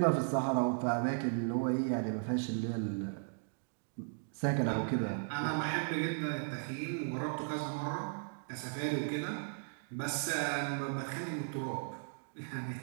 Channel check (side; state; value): left; silent; digital silence